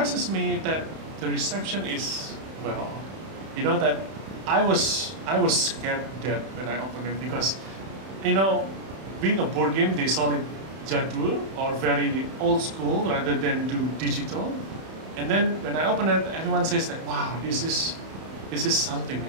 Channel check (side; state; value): left; late; 31 ms